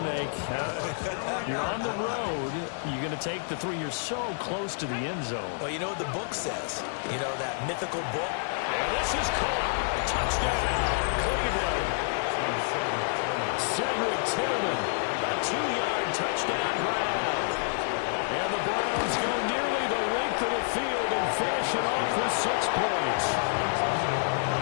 You're on the road. You're going to take the 3. You're so close to the end zone. Well, you know what the book says. You know, that mythical book. And this is caught. Touchdown, Cleveland. Cedric Tillman, a 2-yard touchdown grab. And the Browns go nearly the length of the field and finish it off with 6 points.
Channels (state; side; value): silent; right; digital silence